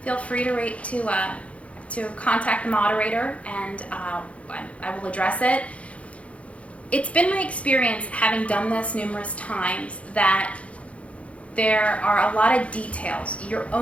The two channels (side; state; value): right; late; 0.063 ms